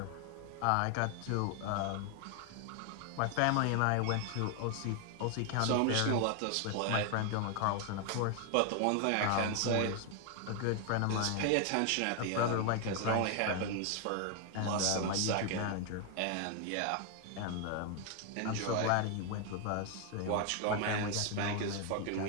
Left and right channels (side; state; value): both; different; correlation 0.00